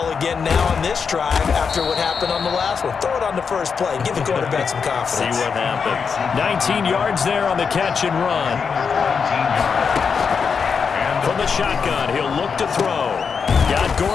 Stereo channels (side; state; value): right; quieter; 5.9 dB